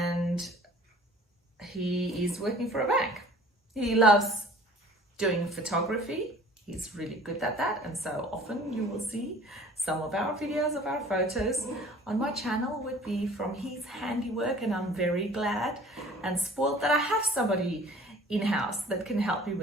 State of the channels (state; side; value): normal; both; correlation 0.49